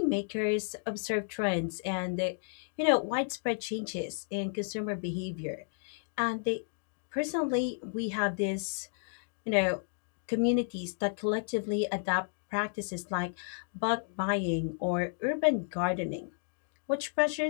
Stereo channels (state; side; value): silent; right; digital silence